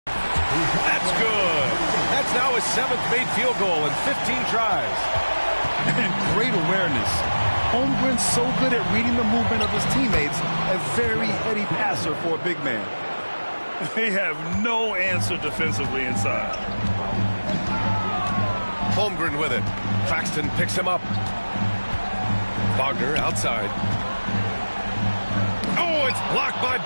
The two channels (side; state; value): both; inverted; correlation -1.00